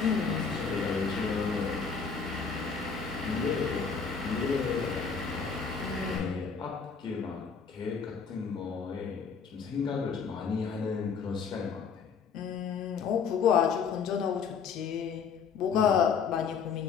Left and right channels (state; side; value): quieter; right; 6.0 dB